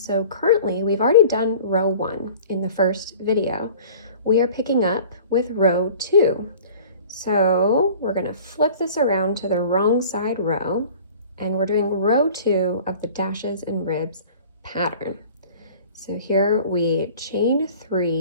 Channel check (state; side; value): inverted; both; correlation -0.45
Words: currently we've already done row 1 in the first video. We are picking up with row 2. So we're going to flip this around to the wrong side row, and we're doing row 2 of the dashes and ribs pattern. So here we chain